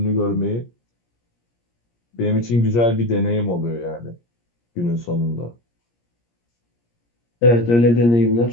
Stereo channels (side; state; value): right; late; 17 ms